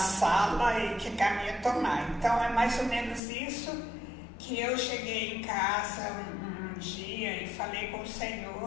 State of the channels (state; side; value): drops out; right; at 3.2 s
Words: e que caminho tomar. Então é mais ou menos isso que eu cheguei em casa um dia e falei com o